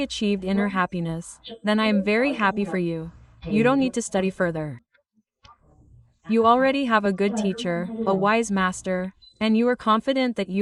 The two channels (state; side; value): identical; both; correlation 1.00